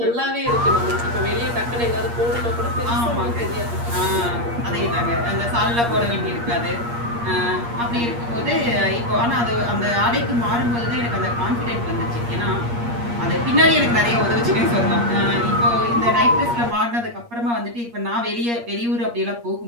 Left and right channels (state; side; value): late; left; 8.5 ms